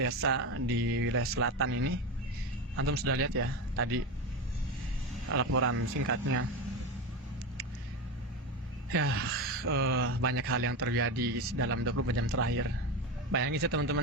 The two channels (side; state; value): both; normal; correlation 0.19